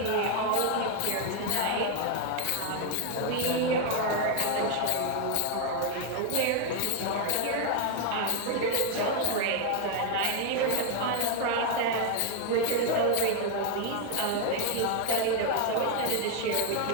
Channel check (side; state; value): both; different; correlation 0.01